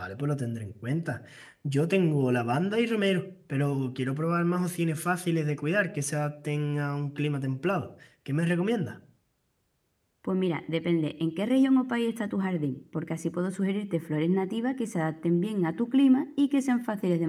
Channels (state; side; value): identical; both; correlation 1.00